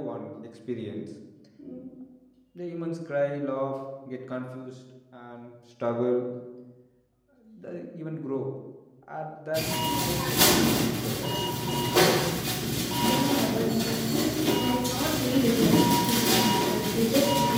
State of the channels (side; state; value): both; identical; correlation 1.00